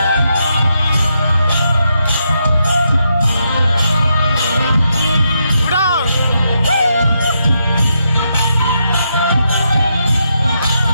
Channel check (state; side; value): inverted; both; correlation -0.81